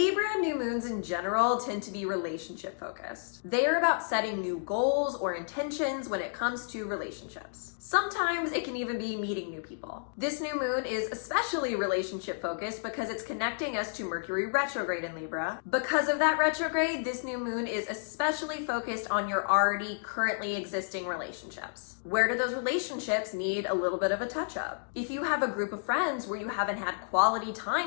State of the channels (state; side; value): silent; right; digital silence